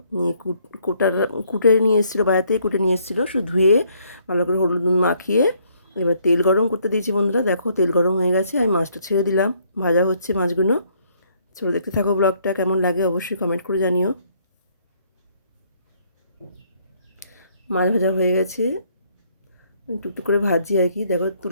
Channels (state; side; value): inverted; both; correlation -0.67